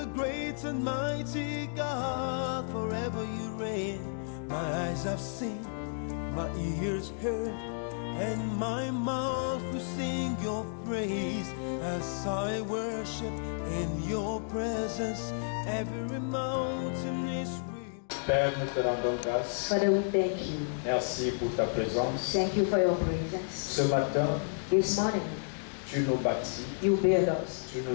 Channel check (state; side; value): silent; right; digital silence